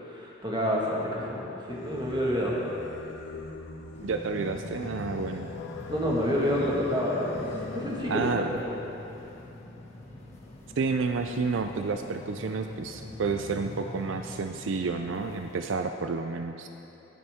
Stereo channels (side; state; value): both; normal; correlation 0.35